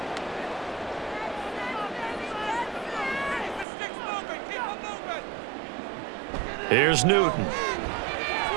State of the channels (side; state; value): left; drops out; at 3.7 s